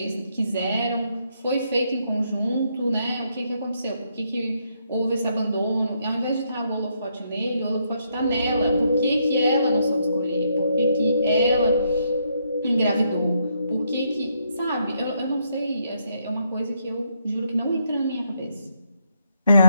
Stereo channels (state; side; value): inverted; both; correlation -0.76